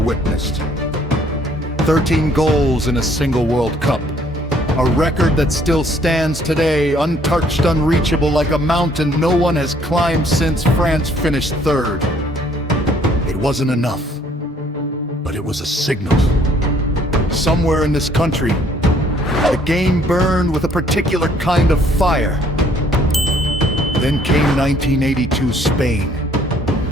13 goals in a single World Cup. A record that still stands today, untouched, unreachable, like a mountain no one has climbed since France finished third. It wasn't enough, but it was a signal. Somewhere in this country, the game burned with a particular kind of fire. Then came 1982 Spain,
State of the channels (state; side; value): normal; both; correlation 0.62